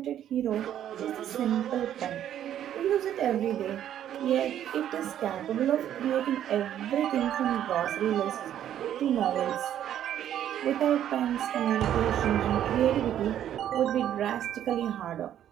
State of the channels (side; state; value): left; quieter; 10.8 dB